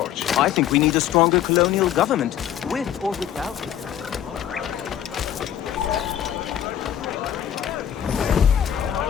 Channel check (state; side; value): quieter; right; 10.4 dB